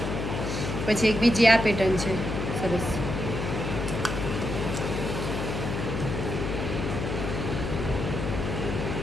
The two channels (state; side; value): noise; left; hum, 3 dB below the sound